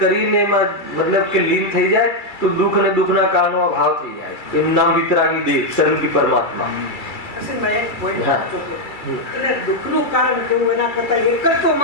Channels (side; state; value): right; late; 2.3 ms